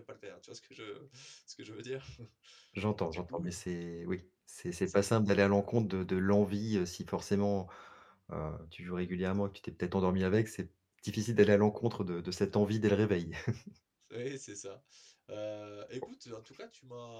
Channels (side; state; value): both; identical; correlation 1.00